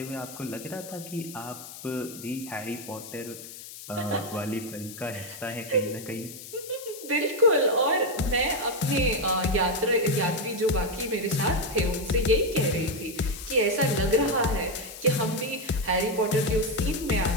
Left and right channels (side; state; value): left; noise; hiss, 14 dB below the sound